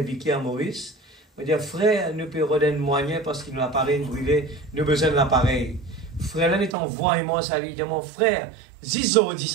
Vicky à Maurice. On dit, frère, nous pouvons redonner moyen parce qu'il nous a appareil brûlé, nous avons besoin de l'appareil. Frère, là, est en voix et moi, ça lui dit, mon frère, Zizo dit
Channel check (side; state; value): left; drops out; at 6.8 s